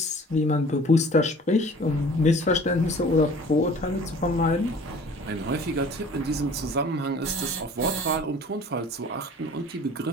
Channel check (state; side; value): normal; both; correlation 0.47